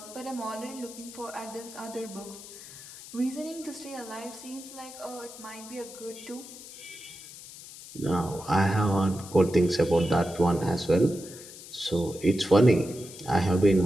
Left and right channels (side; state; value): left; noise; hiss, 15 dB below the sound